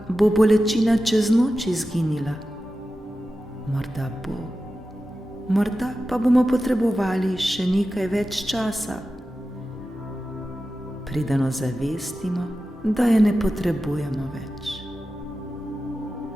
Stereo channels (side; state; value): both; normal; correlation 0.93